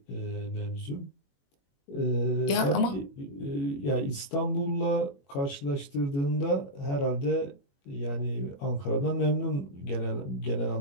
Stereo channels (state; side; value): late; right; 21 ms